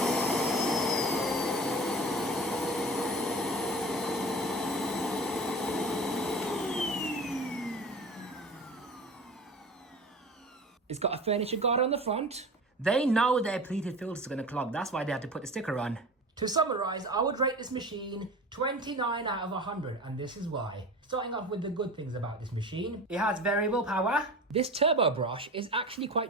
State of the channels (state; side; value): normal; both; correlation 0.35